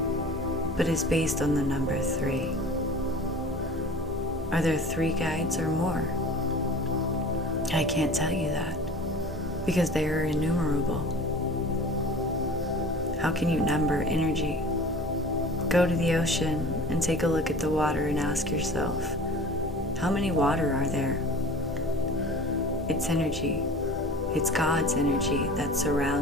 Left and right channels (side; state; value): both; normal; correlation 0.41